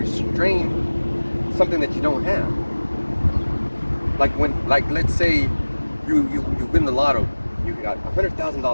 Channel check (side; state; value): both; inverted; correlation -1.00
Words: something that you don't have. Like let's say you win the lotto, you got